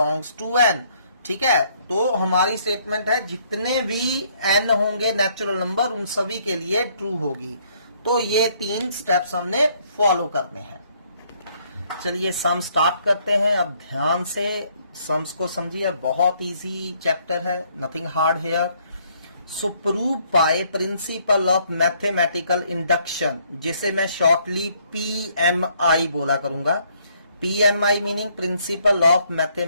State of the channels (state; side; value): inverted; both; correlation -0.67